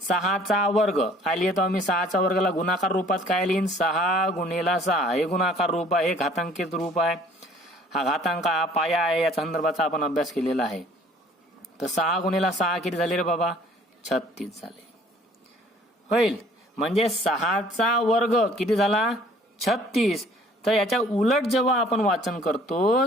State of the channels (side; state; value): both; normal; correlation 0.55